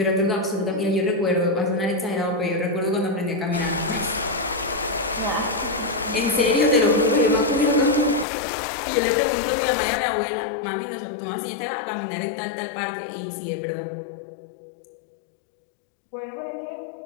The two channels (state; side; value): drops out; right; at 8.2 s